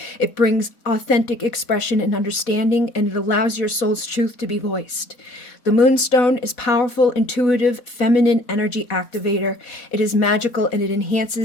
It brings authentic expression and understanding, and it allows your soul's truth to be voiced. The moonstone is powerful, intuitive, feminine energy activator. It is magical, and it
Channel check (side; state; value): right; late; 4.1 ms